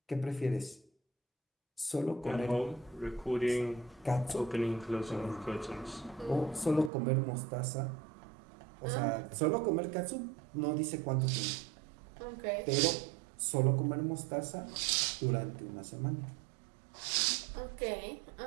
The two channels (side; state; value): left; drops out; at 6.9 s